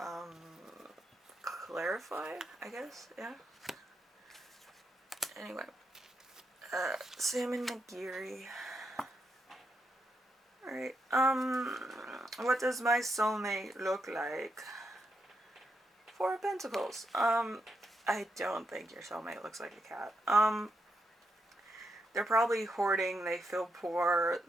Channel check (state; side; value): normal; both; correlation 0.82